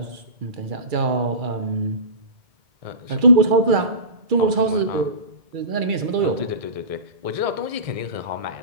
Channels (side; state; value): left; late; 2.3 ms